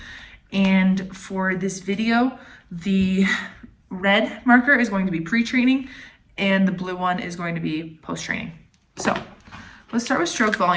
And for this video, the red marker is going to be pre-training and the blue one is going to be post-training. So let's start with stroke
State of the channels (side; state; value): both; identical; correlation 1.00